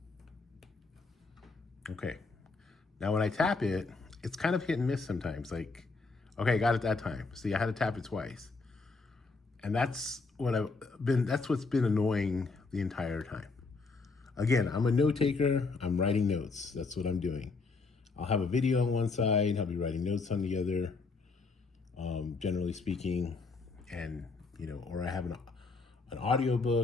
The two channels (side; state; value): right; quieter; 4.1 dB